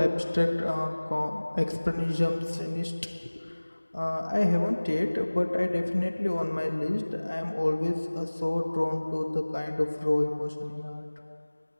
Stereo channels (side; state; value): both; inverted; correlation -1.00